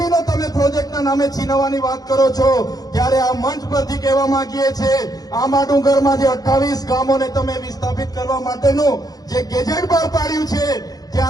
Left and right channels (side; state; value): right; late; 0.18 ms